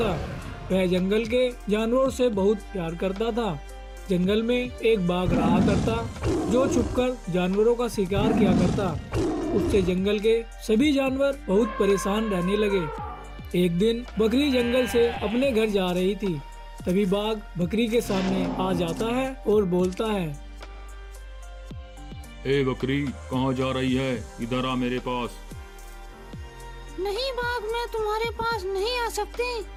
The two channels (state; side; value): identical; both; correlation 1.00